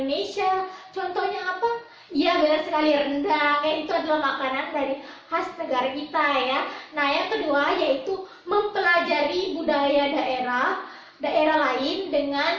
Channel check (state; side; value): identical; both; correlation 1.00